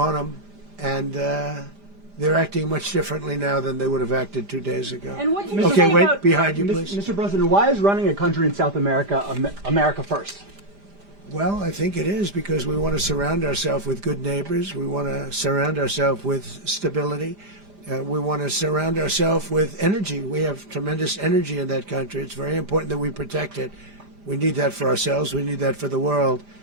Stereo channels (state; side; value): late; left; 5.0 ms